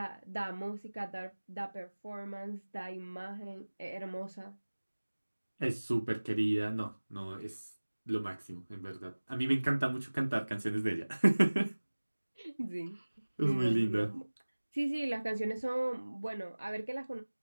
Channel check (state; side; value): inverted; both; correlation -1.00